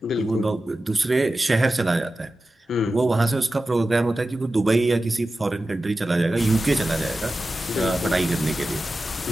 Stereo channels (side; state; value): both; normal; correlation 0.94